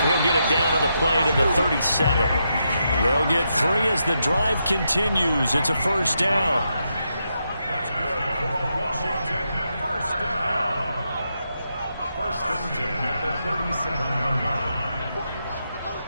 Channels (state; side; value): inverted; both; correlation -0.83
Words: he'll get it down on the play to the 37. They'll get 3 as the drive continues. It's a first down. That's good for Washington. First down. First and 10 at the 37-yard line.